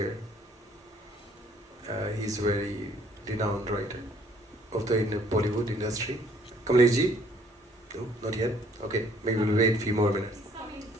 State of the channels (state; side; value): normal; both; correlation 0.61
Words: he's very renowned writer of the Bollywood industry. Kamlesh ji? No, not yet? Okay, maybe we'll wait a few more minutes.